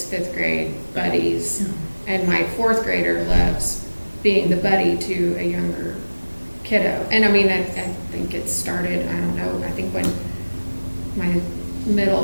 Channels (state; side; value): inverted; both; correlation -1.00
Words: 5th grade buddies, and my 4th grader loves being the buddy to a younger kiddo. And I mean, I think it started, I don't know, I think when my